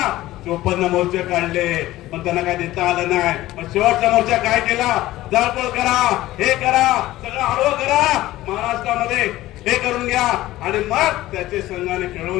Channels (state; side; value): quieter; right; 16.2 dB